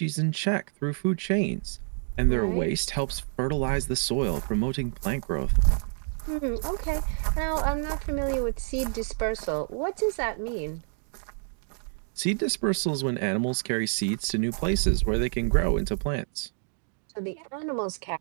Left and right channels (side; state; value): left; silent; 59 dB below the other